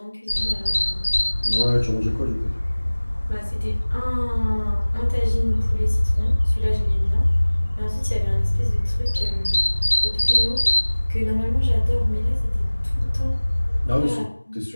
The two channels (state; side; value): inverted; both; correlation -1.00